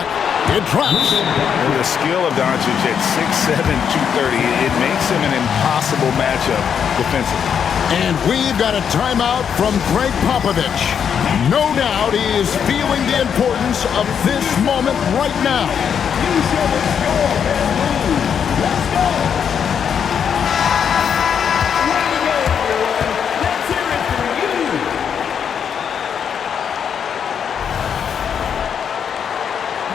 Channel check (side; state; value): right; quieter; 7.7 dB